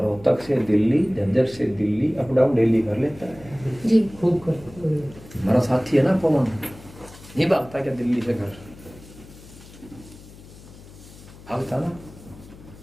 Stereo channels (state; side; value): noise; left; hum, 20 dB below the sound